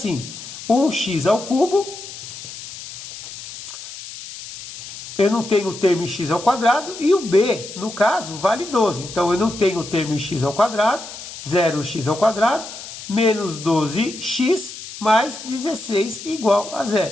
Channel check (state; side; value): noise; left; hiss, 12 dB below the sound